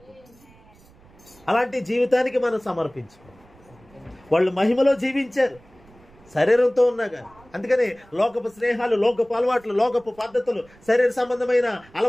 అలాంటి జీవితానికి మనం సమర్పించుకోవాలి. వాళ్ళు మహిమలో జీవించారు శరీరంతో ఉన్నాగా. అందుకని లోకపు స్నేహాలు, లోకపు అలవాట్లు, లోకపు పద్ధతులు, శరీర సంబంధమైన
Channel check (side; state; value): right; noise; rumble, 27 dB below the sound